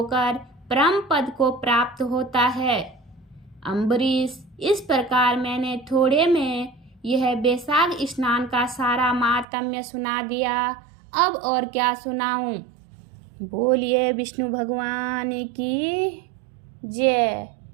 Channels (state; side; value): drops out; left; at 9.5 s